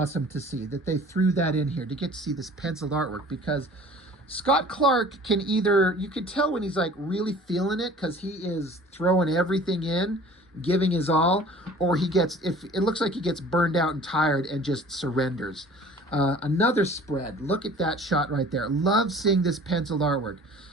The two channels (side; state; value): both; normal; correlation 0.47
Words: to see, that they threw that in here to get to see this penciled artwork, because Scott Clark can either, you can tell when he's like really feeling it because he is throwing everything in, giving his all, or he gets, if it looks like he gets burned out and tired and just surrenders. Another spread. Look at that shot right there. Love seeing this penciled artwork.